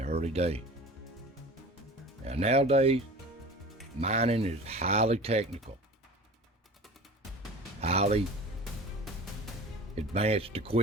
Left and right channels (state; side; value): normal; both; correlation 0.39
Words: early days. Now nowadays, mining is highly technical, highly advanced